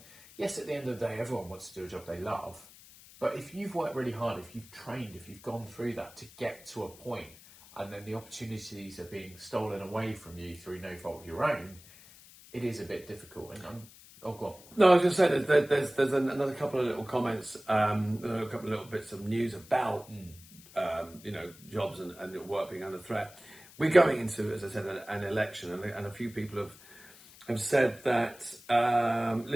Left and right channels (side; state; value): left; noise; hiss, 21 dB below the sound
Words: yes, at the end of the day, everyone wants to do a job they love. But if you've worked really hard, if you've trained, if you've gone through that to get to a point, and then the opportunities are being stolen away from you through no fault of your own, it is a bit difficult. And go on. No, I was just saying there's another couple of little comments, a couple of little bits of news about jobs and work being under threat. We're going into, as I said, an election, and a few people have said that